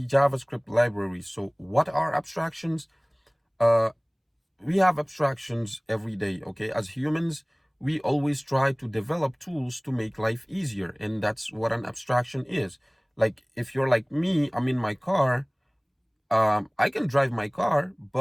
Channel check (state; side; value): identical; both; correlation 1.00